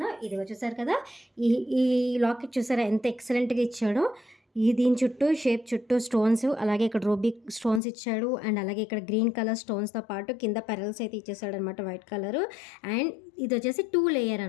ఇదిగో చూసారు కదా, ఈ ఈ లాకెట్ చూసారా ఎంత ఎక్సలెంట్గా ఇచ్చాడో. దీని చుట్టూ షేప్ చుట్టూ స్టోన్స్, అలాగే ఇక్కడ రూబిక్ స్టోన్స్ ఇచ్చాడు. అండ్ అలాగే ఇక్కడ గ్రీన్ కలర్ స్టోన్స్తో పాటు కింద పెరల్స్ అయితే ఇచ్చేసాడు అనమాట, వైట్ కలర్. అండ్ ఇది వచ్చేసి 2 లేయర్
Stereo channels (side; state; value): right; drops out; at 7.8 s